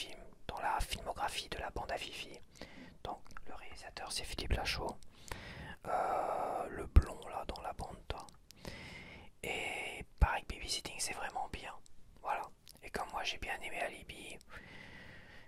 dans la filmographie de la bande à Fifi. Donc, le réalisateur, c'est Philippe Lachaud. Le blond, là, dans la bande, toi. Et pareil, Babysitting, c'est vraiment bien. Voilà. Et comme moi, j'ai bien aimé Alibi,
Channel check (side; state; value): both; identical; correlation 1.00